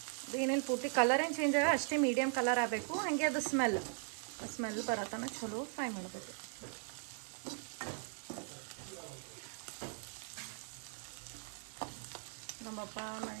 ಅದು ಏನೇನು ಪೂರ್ತಿ ಕಲರ್ ಏನು ಚೇಂಜ್ ಆಗ ಅಷ್ಟೇ ಮೀಡಿಯಮ್ ಕಲರ್ ಆಗಬೇಕು. ಹಾಗೆ ಅದು ಸ್ಮೆಲ್ ಬರತನ ಚಲೋ ಫ್ರೈ ಮಾಡಬೇಕು. ನಮ್ಮಪ್ಪ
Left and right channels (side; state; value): left; silent; 52 dB below the other